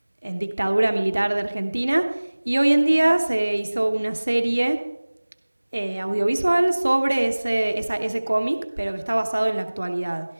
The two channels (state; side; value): inverted; both; correlation -1.00